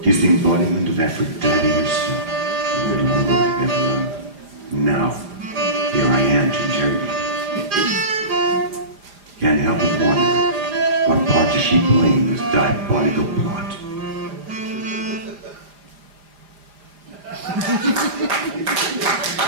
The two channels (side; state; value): left; late; 4.9 ms